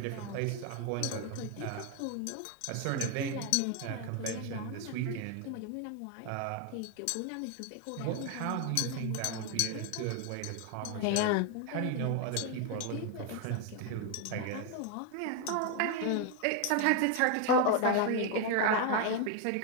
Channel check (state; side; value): different; both; correlation 0.01